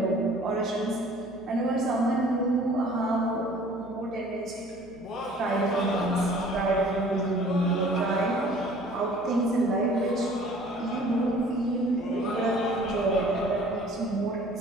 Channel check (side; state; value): right; noise; hum, 25 dB below the sound